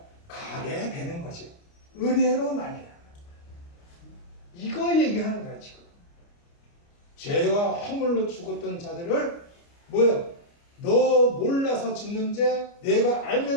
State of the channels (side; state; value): right; late; 29 ms